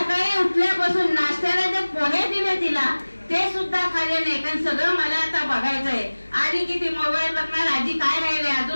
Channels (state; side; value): inverted; both; correlation -1.00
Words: उठल्यापासून नाश्त्याला जे पोहे दिले तिला ते सुद्धा खाल्ले नाही. कारण सगळं मला आता बघायचंय. आधी किती मोबाईल बघणार, आधी काय राहिले,